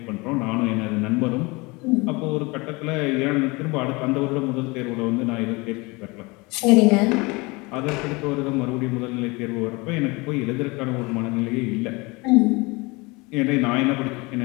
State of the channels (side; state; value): right; quieter; 25.5 dB